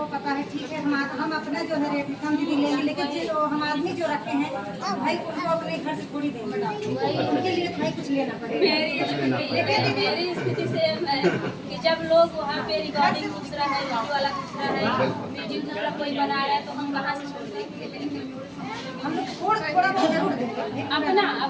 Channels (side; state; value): both; identical; correlation 1.00